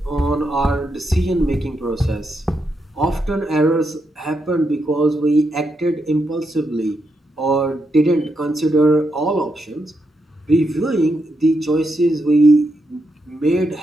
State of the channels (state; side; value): normal; both; correlation 0.82